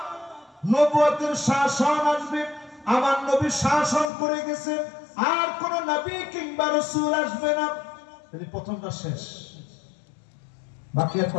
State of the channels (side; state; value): right; drops out; at 4.1 s